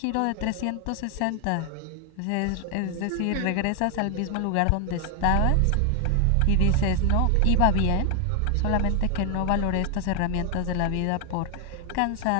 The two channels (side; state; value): both; different; correlation 0.00